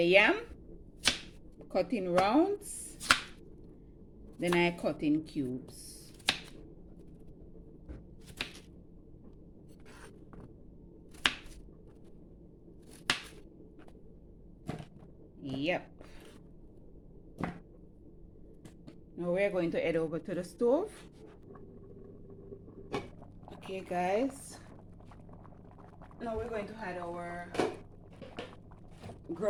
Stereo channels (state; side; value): identical; both; correlation 1.00